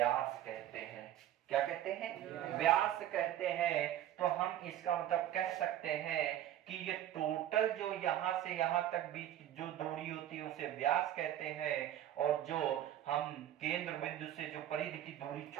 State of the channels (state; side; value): quieter; left; 12.1 dB